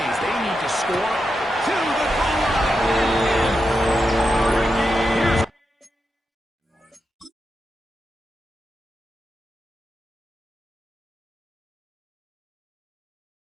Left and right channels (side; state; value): both; normal; correlation 0.87